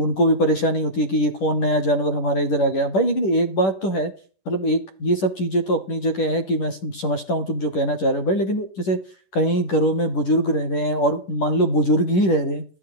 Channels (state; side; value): late; right; 10 ms